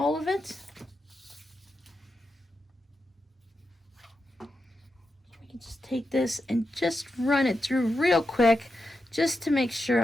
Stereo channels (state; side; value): normal; both; correlation 0.88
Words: of it. We can just take this and just run it through real quick, just to make sure